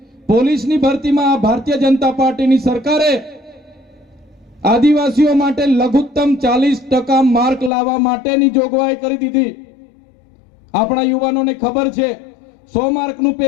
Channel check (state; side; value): drops out; right; at 7.7 s